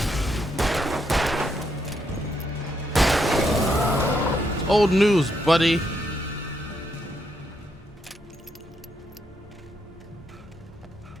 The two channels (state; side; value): normal; both; correlation 0.78